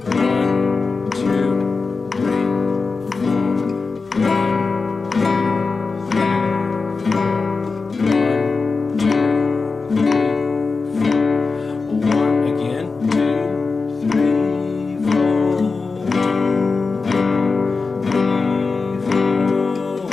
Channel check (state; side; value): quieter; right; 4.3 dB